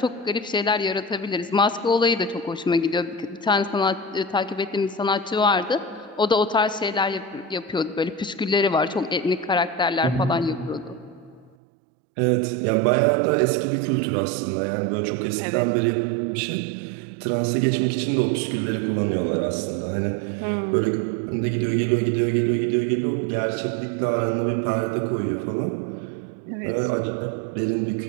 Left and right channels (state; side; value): drops out; left; at 11.6 s